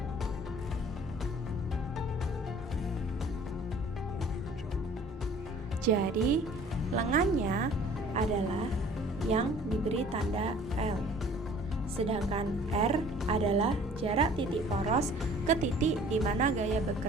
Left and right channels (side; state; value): both; normal; correlation 0.51